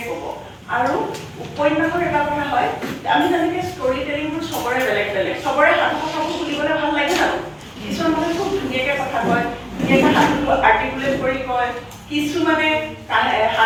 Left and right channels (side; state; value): both; identical; correlation 1.00